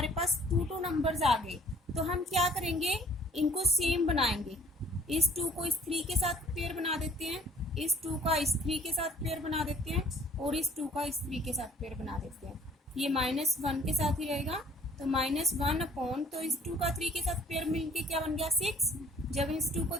पास 2 नंबर्स आ गए। तो हम क्या करेंगे, इनको सेम बनाएंगे। इस 2 को इस 3 के साथ पेयर बना देते हैं, इस 2 का इस 3 के साथ पेयर बना देते हैं और इस 2 का इस 3 के साथ पेयर बना देते हैं। ये -1 के साथ ही रहेगा, तो -1 अपॉन, तो इस 2 का 3 के साथ पेयर मिलके क्या बन गया 6। जब इस 2 को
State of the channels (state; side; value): normal; both; correlation 0.55